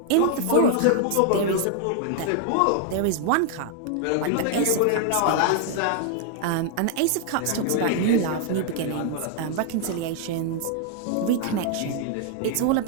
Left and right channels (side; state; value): both; different; correlation 0.00